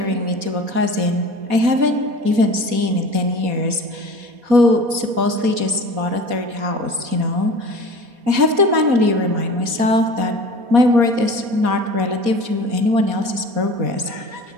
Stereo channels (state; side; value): late; left; 4.2 ms